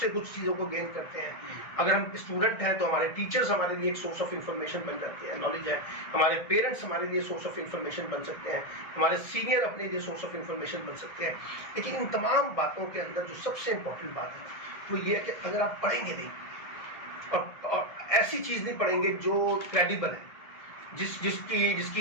کچھ چیزوں کو گین کرتے ہیں۔ اگر ہم اسٹوڈنٹ ہیں تو ہمارے ٹیچرز ہمارے لیے ایک سورس آف انفارمیشن بن جاتے ہیں، نالج ہے۔ ہمارے پیرنٹس ہمارے لیے سورس آف انفارمیشن بن سکتے ہیں، ہمارے سینئر اپنے لیے سورس آف انفارمیشن بن سکتے ہیں۔ لیکن ان تمام باتوں کے اندر جو سب سے امپورٹنٹ بات ہے وہ یہ ہے کہ اگر آپ پڑھیں گے نہیں اور ایسی چیز نہیں پڑھیں گے جو کریڈیبل ہے، جس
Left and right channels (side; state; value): right; late; 1.6 ms